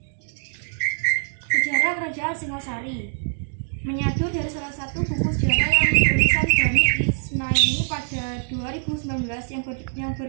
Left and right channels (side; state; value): left; silent; digital silence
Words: Sejarah Kerajaan Singosari menyatu dari salah satu buku sejarah yang ditulisan Bani Ismaili pada 2019 yang